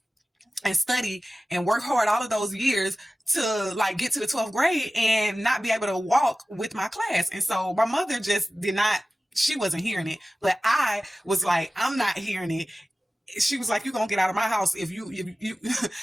and study and work hard all of those years to like get to the 12th grade and not be able to walk with my class. And so my mother just she wasn't hearing it, but I was like, I'm not hearing it. She was like, "You're gonna get out of my house if you."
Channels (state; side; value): normal; both; correlation 0.96